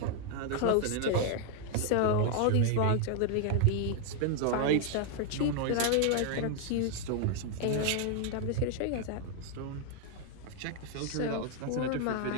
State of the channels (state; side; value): different; both; correlation 0.00